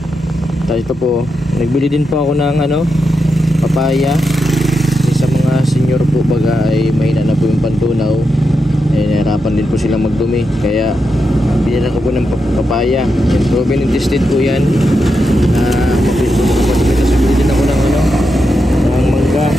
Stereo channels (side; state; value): both; normal; correlation 0.86